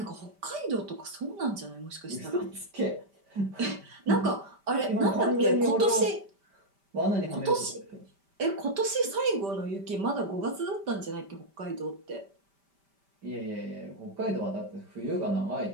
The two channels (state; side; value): late; left; 5.1 ms